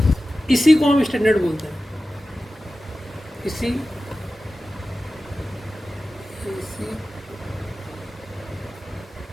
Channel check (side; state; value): both; normal; correlation 0.95